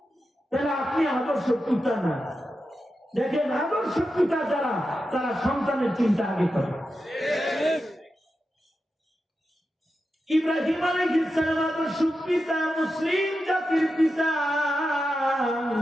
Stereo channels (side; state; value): both; normal; correlation 0.90